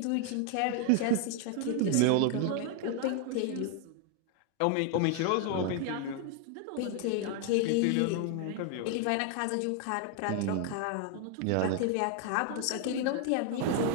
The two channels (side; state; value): both; different; correlation 0.00